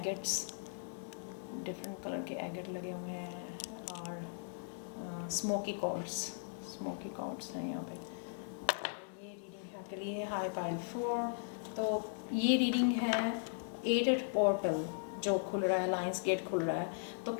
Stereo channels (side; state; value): right; silent; digital silence